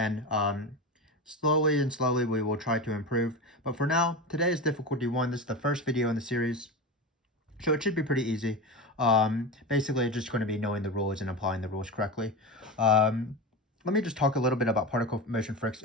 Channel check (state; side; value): normal; both; correlation 0.23